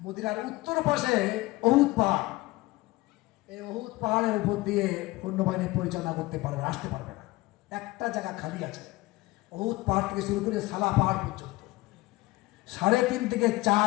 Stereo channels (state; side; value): quieter; right; 20.3 dB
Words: উত্তর পাশে উহুদ পাহাড়, এই উহুদ পাহাড়ের উপর দিয়ে সৈন্যবাহিনী পরিচালনা করতে পারবে, আসতে পারবে না। একটা জায়গা খালি আছে, উহুদ পাহাড় থেকে শুরু করে সালা পাহাড় পর্যন্ত 3.5 থেকে